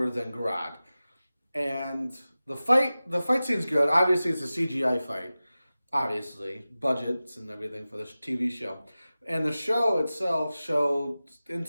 than Grodd. And the fight scene's good. Obviously, it's a CGI fight. Obviously, budgets and everything for this TV show. And the show itself showed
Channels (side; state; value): both; inverted; correlation -0.96